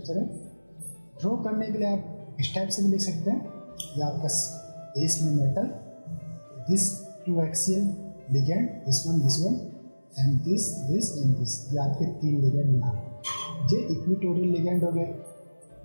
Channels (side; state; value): both; inverted; correlation -1.00